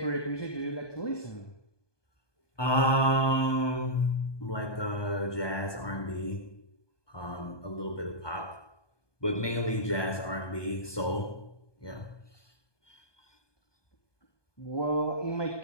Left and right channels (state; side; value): late; right; 1.2 ms